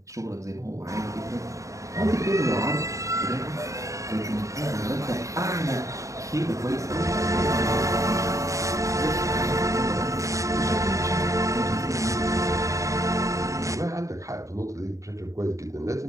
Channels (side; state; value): left; late; 0.16 ms